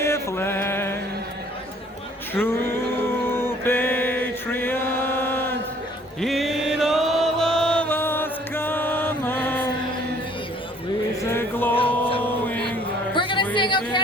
land, true patriot, in all of us common, with a glowing. We're gonna sing "O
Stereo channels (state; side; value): normal; both; correlation 0.57